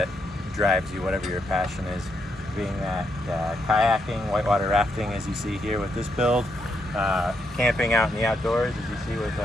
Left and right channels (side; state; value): both; normal; correlation 0.79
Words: drives you, whatever your passion is, being that kayaking, whitewater rafting, as you see here with this build, camping out in the outdoors, as you see with